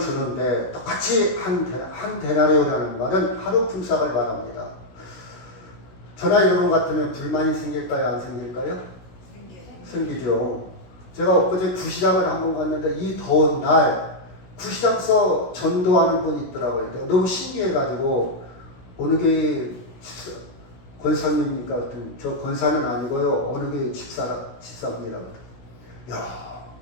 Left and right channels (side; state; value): right; late; 16 ms